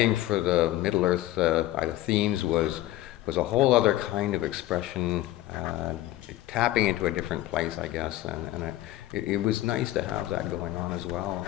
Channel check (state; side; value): quieter; right; 15.4 dB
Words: for the Middle-earth themes was a whole other kind of expression, tapping into a different place, I guess, and it was nice to have that going on as well,